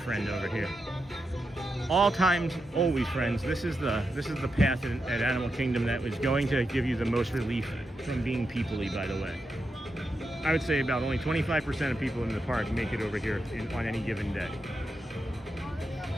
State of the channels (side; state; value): both; normal; correlation 0.86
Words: over here. All times, always friends. This is the path at Animal Kingdom that is going to give you the most relief from being people-y, by the way. I would say about only 25% of people in the park make it over here on any given day.